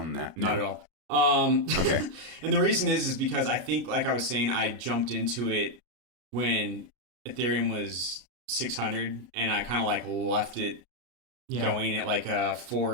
that? Not at all. Okay. And the reason is because I think, like I was saying, I jumped into it when Ethereum was 600 and I kind of like left it going at like a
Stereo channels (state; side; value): late; left; 33 ms